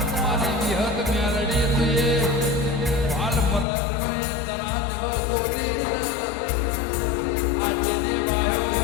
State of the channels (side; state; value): right; drops out; at 3.7 s